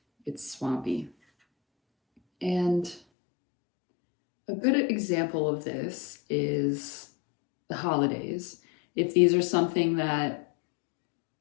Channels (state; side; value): drops out; right; at 3.0 s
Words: It's swampy. And a good example of this is the holidays. If these are something that